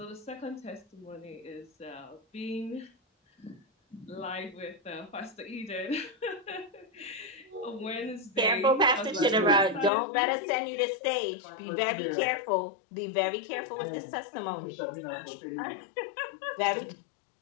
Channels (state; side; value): drops out; right; at 9.9 s